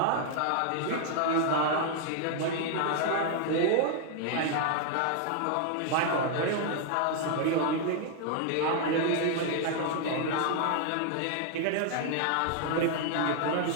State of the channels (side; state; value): both; different; correlation 0.00